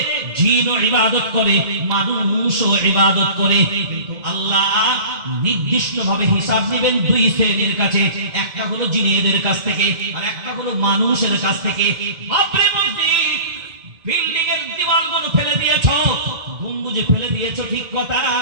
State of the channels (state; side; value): late; left; 2.1 ms